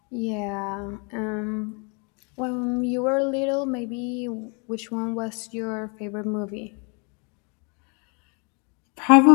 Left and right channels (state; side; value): quieter; right; 34.7 dB